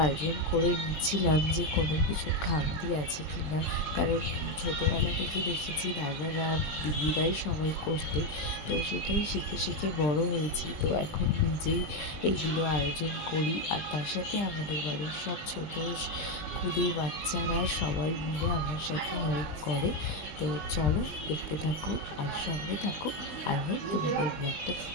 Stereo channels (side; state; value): right; late; 20 ms